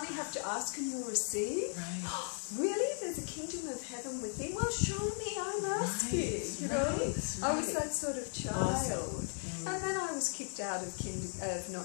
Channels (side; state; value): right; silent; 53 dB below the other